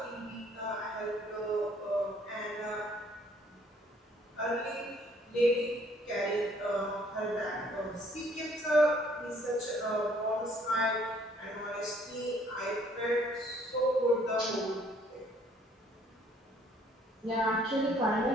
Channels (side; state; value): both; normal; correlation 0.62